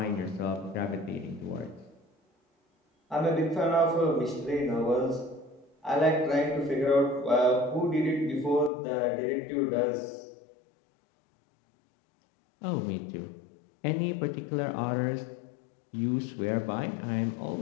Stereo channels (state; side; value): drops out; right; at 8.7 s